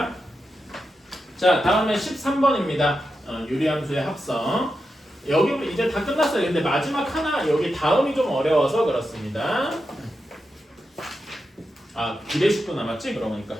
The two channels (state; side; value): normal; both; correlation 0.88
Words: 자, 다음에 13번입니다. 유리함수의 합성. 여기 이제 다 끝났어요. 근데 마지막 하나 여기 다음이 좀 어려워서 그렇습니다. 비례식도 남았지? 그러니까